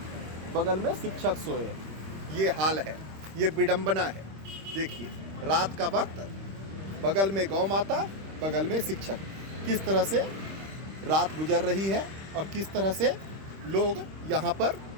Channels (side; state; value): left; late; 25 ms